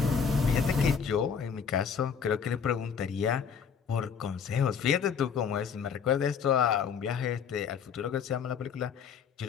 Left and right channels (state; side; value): quieter; right; 6.7 dB